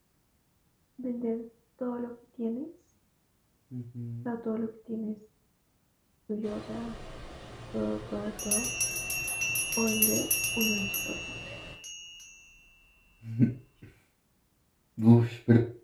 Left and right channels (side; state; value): both; identical; correlation 1.00